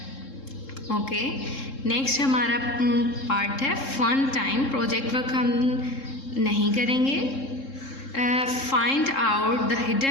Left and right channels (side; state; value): right; late; 3.7 ms